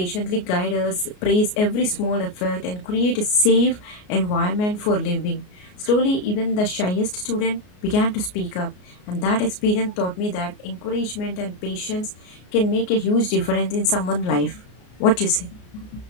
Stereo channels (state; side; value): late; right; 33 ms